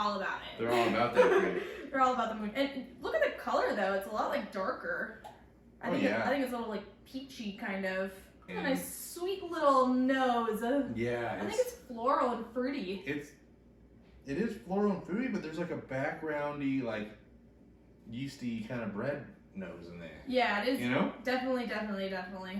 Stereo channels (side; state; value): both; identical; correlation 1.00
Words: about it. They're all about that grape. They're all about the moon. And look at the color though; it's a lot darker. I think it's a little peachy kind of. And a nice sweet little nose. Yeah, I think it's floral and fruity. It is floral and fruity, but there's a backgroundy, yeasty kind of bread nose in there. Yeah, it is. You know? Definitely